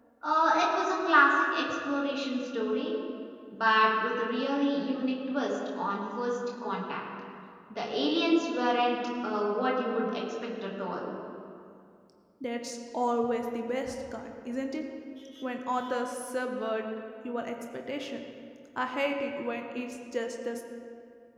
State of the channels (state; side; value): identical; both; correlation 1.00